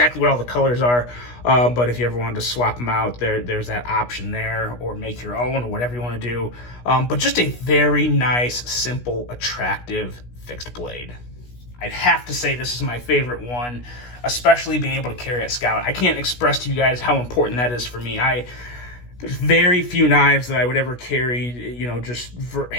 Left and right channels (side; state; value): right; late; 16 ms